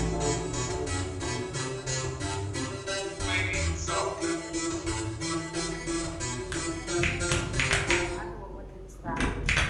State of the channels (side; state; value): both; identical; correlation 1.00